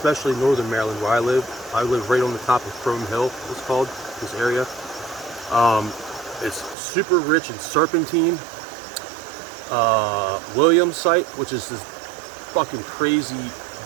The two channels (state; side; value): drops out; left; at 6.8 s